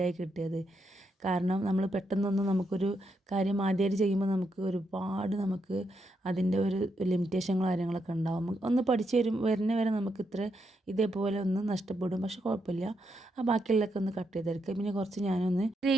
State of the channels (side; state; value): both; normal; correlation 0.81